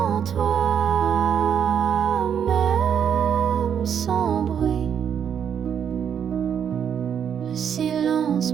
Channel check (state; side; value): quieter; left; 8.2 dB